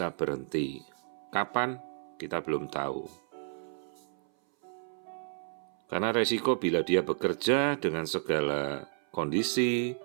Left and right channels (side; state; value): left; silent; 56 dB below the other